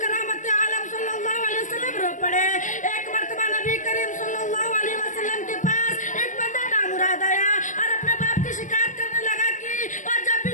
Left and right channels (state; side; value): late; right; 0.37 ms